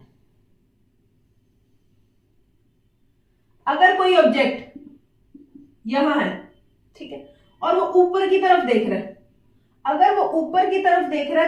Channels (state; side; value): identical; both; correlation 1.00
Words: अगर कोई ऑब्जेक्ट यहां है, ठीक है, और वो ऊपर की तरफ देख रहा है, अगर वो ऊपर की तरफ देख रहा